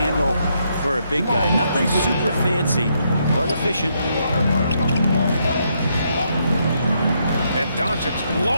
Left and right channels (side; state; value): both; inverted; correlation -0.76